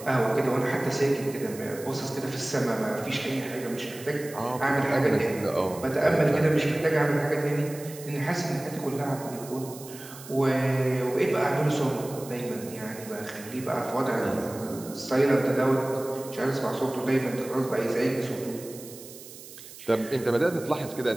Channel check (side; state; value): right; noise; hiss, 16 dB below the sound